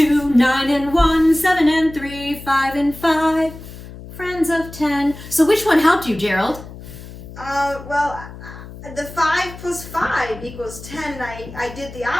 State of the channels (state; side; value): noise; left; hum, 15 dB below the sound